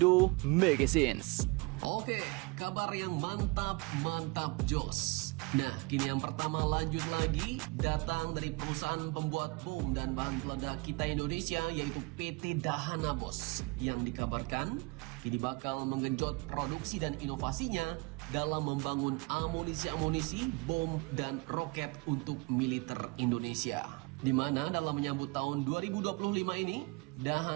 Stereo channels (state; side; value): quieter; left; 27.5 dB